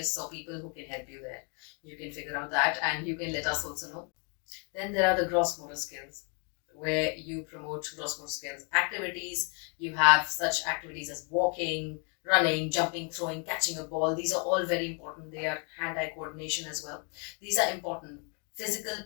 or people who can help you there. You can figure out that, and you can let us also know. Then there are the gross motor skills, where you promote gross motor skills activities. You have such activities as walking, running, jumping, throwing, catching a ball. These are all very important. They are hand-eye coordination as well. These are important. Physical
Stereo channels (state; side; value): quieter; right; 37.8 dB